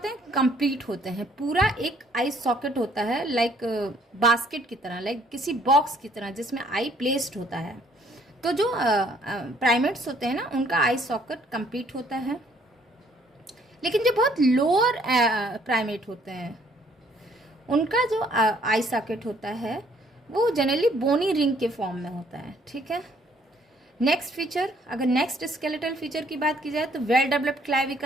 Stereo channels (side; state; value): both; normal; correlation 0.63